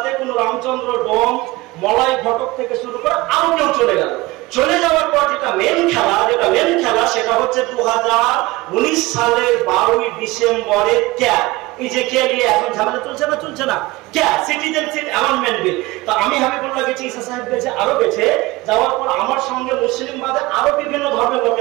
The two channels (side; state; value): left; quieter; 20.7 dB